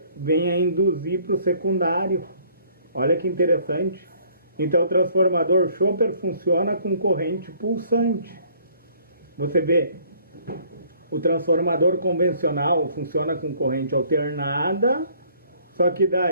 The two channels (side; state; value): both; inverted; correlation -0.59